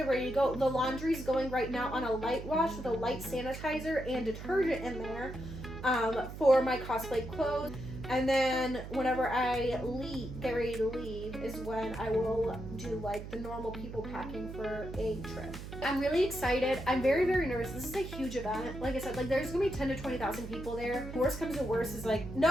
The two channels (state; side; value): noise; right; hum, 10 dB below the sound